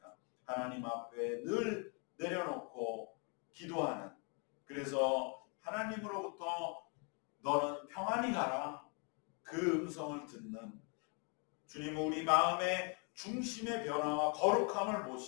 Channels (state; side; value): quieter; right; 36.9 dB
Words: 하나님 앞에 늘 내려놓고 기도하는, 그래서 하나님으로부터 너는 평안히 가라, 그 음성을 듣는, 주님은 우리 마음의 중심의 변화와 거룩함을